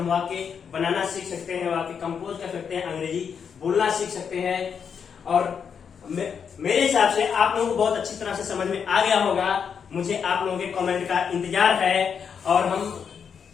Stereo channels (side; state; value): right; quieter; 6.9 dB